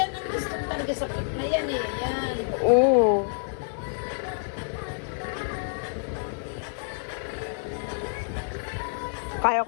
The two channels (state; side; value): silent; right; digital silence